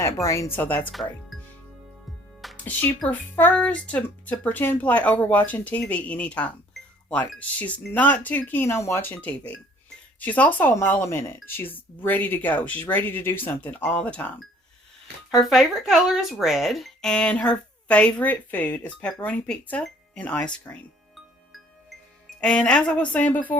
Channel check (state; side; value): normal; both; correlation 0.57